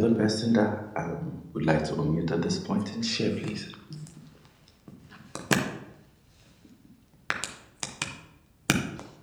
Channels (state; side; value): identical; both; correlation 1.00